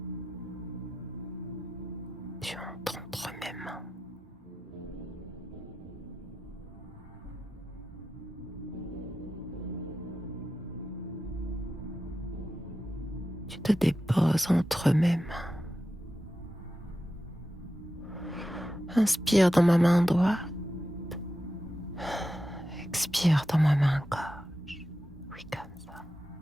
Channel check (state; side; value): normal; both; correlation 0.90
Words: Tu entres entre mes mains. Tu te déposes entre mes mains. Inspire dans ma main droite. Expire dans ma main gauche. Oui, comme ça.